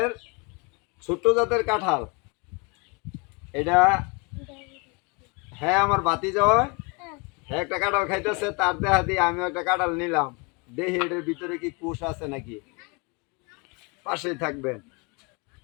ছোট্ট জাতের কাঁঠাল। এটা হ্যাঁ আমার ভাতিজা হয়। হ্যাঁ একটা কাঁঠাল খাইতেছে, তার দেহা দিয়ে আমিও একটা কাঁঠাল নিলাম। দেখি এটার ভিতরে কি কুশ আছে নাকি। পাশেই থাকবেন।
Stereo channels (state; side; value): quieter; right; 30.1 dB